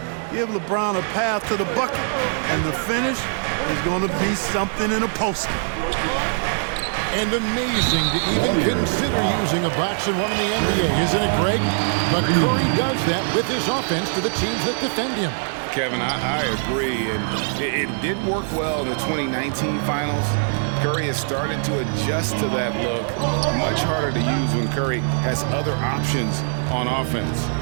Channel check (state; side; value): silent; left; 64 dB below the other